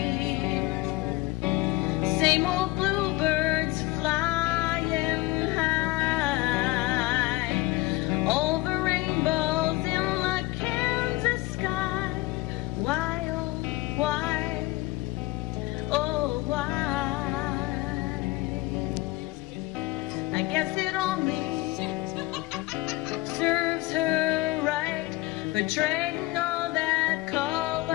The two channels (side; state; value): right; quieter; 19.9 dB